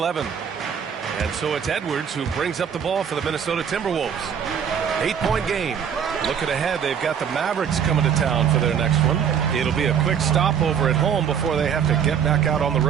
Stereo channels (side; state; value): left; quieter; 7.9 dB